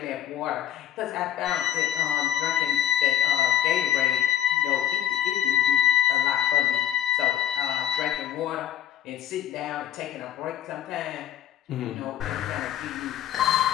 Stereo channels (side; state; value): right; quieter; 11.3 dB